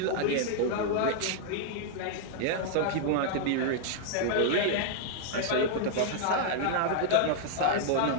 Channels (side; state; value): both; different; correlation -0.01